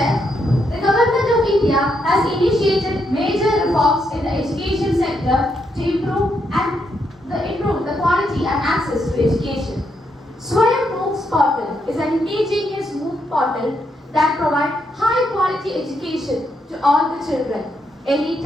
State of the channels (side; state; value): both; normal; correlation 0.79